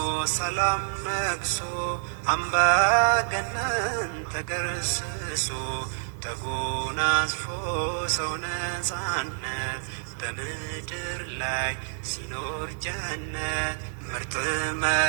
ሰላም ነግሶ አምባገነን ተገርስሶ ተጎናጽፎ ሰው ነፃነት በምድር ላይ ሲኖር ጀነት ምርጥ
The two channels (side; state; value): left; silent; digital silence